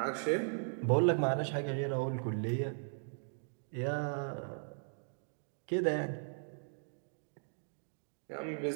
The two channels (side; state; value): left; silent; digital silence